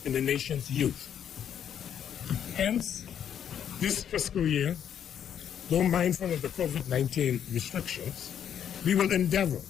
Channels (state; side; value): quieter; right; 9.1 dB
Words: in the nation's youth. Hence, this fiscal year, though mindful of the COVID-19 restrictions, we will endeavor